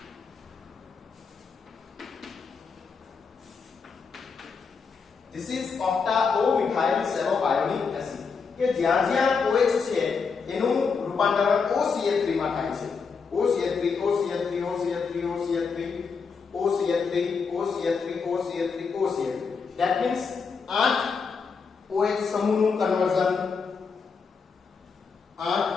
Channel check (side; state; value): right; quieter; 5.3 dB